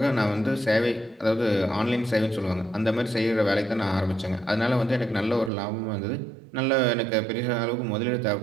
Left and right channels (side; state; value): left; drops out; at 5.5 s